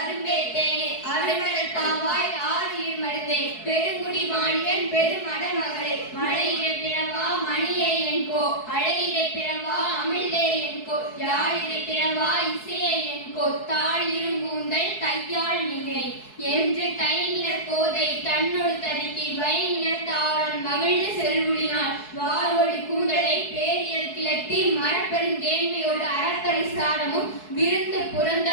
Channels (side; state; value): right; late; 4.7 ms